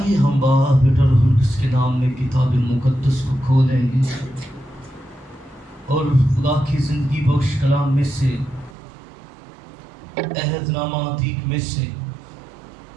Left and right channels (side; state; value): left; drops out; at 8.8 s